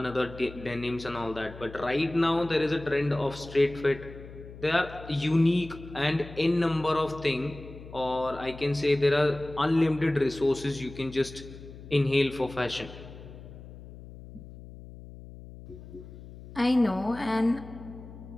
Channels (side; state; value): left; noise; hum, 16 dB below the sound